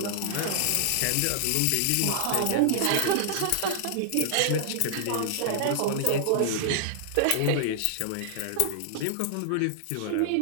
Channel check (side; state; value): both; different; correlation -0.01